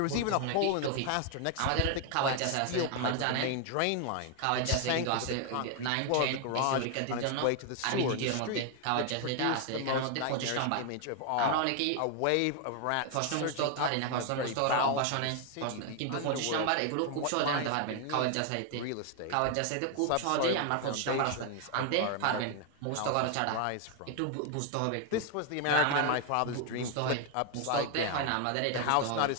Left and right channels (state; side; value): different; both; correlation 0.00